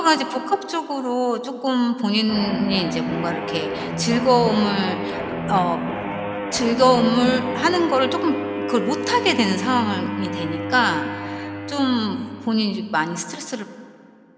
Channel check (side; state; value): both; identical; correlation 1.00